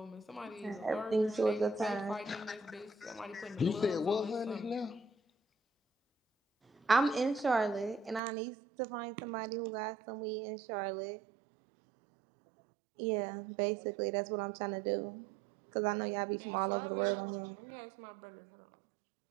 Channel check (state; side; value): drops out; left; at 8.2 s